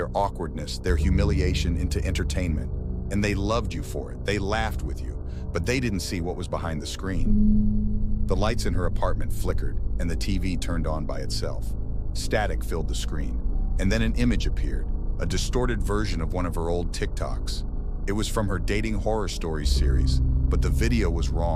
awkwardness, their humiliation into entertainment. And they loved you for it. They laughed with you. But they didn't see what was behind the screen." The lights in her apartment flickered, and the TV turned on by itself. Static filled the screen, and then an image appeared, a distorted version of one of her old TikToks. It was from her Dating Horror Stories series, but the video was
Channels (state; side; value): identical; both; correlation 1.00